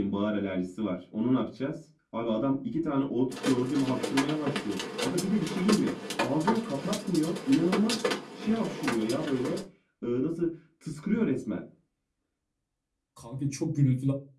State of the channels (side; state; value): both; identical; correlation 1.00